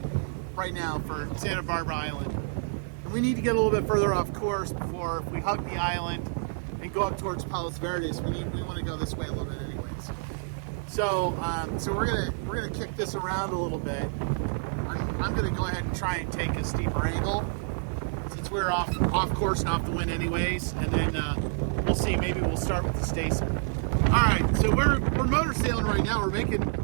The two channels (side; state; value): left; silent; digital silence